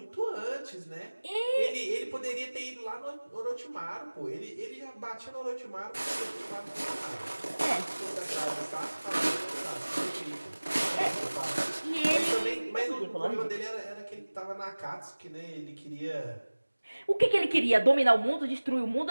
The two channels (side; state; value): both; inverted; correlation -1.00